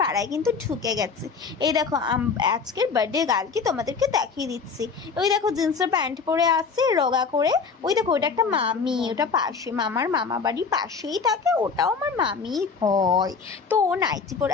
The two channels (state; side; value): quieter; right; 5.3 dB